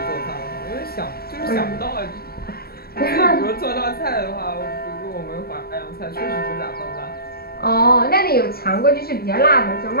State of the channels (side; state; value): right; late; 0.45 ms